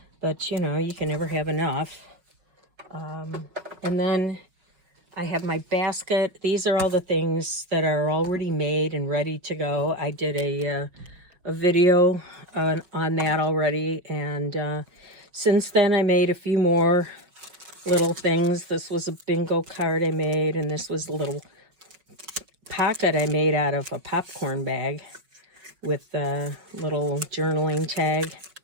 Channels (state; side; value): late; left; 5.4 ms